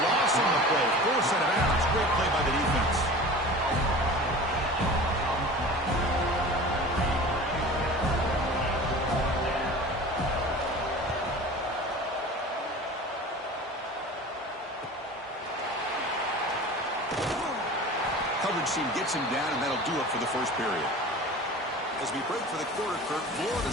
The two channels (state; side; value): normal; both; correlation 0.38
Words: loss on the play. Force out of bounds. Great play by the defense. Coverage team gets him down, and that'll do it for the first period. As we break for the quarter, Kirk, Florida